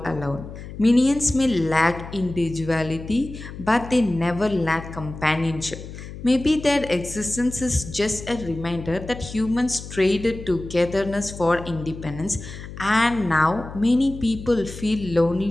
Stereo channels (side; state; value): left; noise; hum, 12 dB below the sound